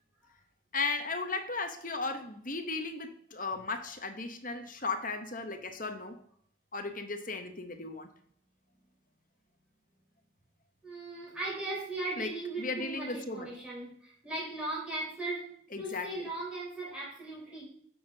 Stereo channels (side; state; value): both; normal; correlation 0.09